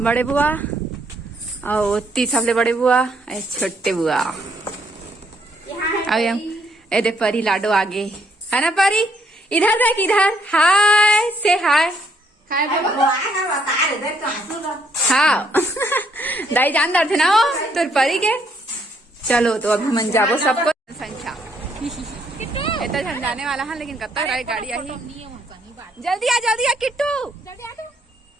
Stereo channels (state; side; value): normal; both; correlation 0.70